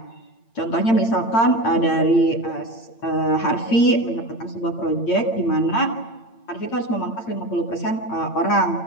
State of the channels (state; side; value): late; right; 8.8 ms